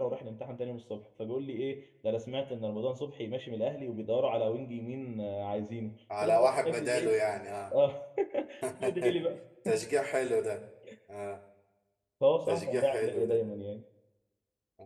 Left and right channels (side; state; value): both; identical; correlation 1.00